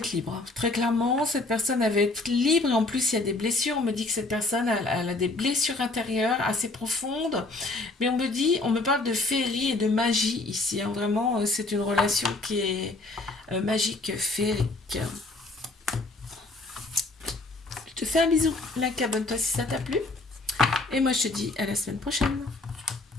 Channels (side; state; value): right; quieter; 3.1 dB